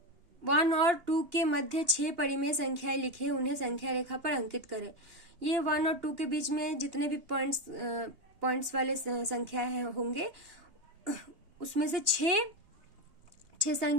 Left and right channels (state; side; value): late; left; 2.9 ms